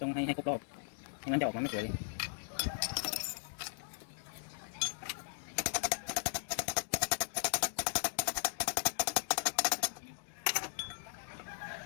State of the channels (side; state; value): right; silent; digital silence